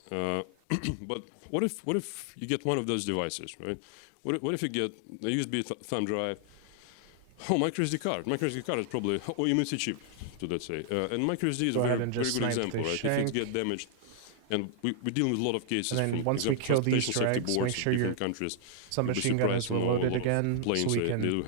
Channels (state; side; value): different; both; correlation 0.00